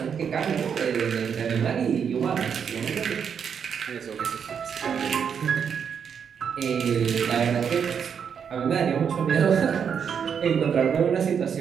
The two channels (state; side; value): quieter; left; 7.2 dB